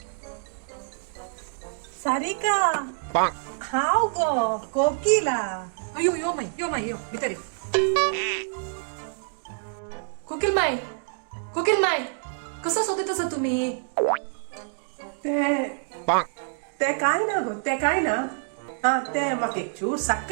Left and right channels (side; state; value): left; silent; digital silence